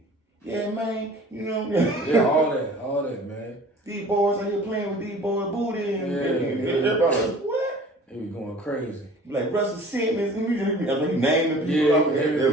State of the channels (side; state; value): both; normal; correlation 0.46